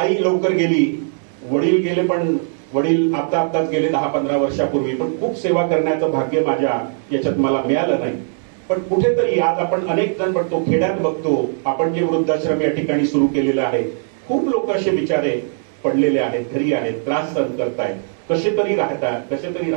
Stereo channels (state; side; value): silent; left; digital silence